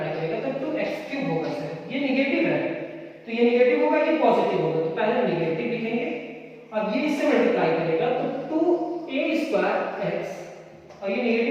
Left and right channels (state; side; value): identical; both; correlation 1.00